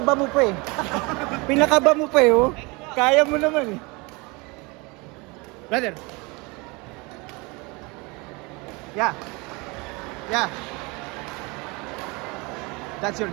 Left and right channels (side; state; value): left; quieter; 26.9 dB